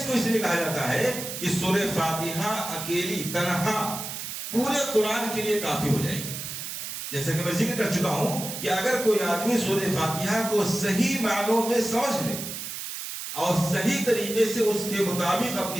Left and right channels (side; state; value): right; noise; hiss, 7 dB below the sound